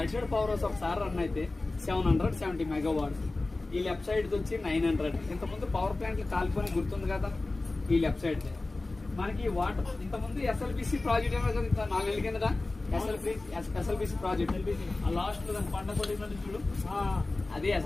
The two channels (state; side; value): quieter; right; 3.2 dB